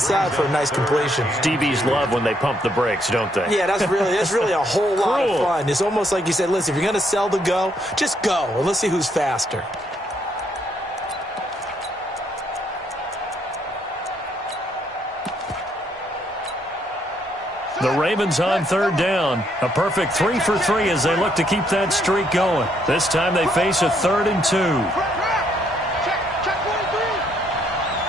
for a nice completion. DBs love when they pump the brakes, don't they? Yeah, that's really a whole lot of fun. It's almost like you said, listen, if you're going to sell the go, just go, and let's see who's faster. The Ravens on 3rd down. A perfect 3 for 3 as they look to keep that streak going. This time they face a 3rd and 2.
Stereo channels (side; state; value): both; normal; correlation 0.72